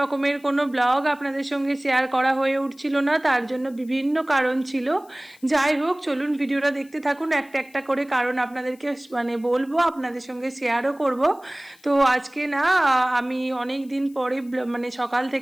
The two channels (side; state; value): left; noise; hiss, 28 dB below the sound